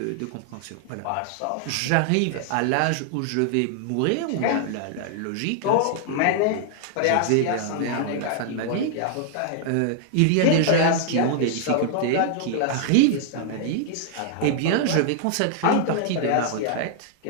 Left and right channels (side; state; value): both; different; correlation -0.01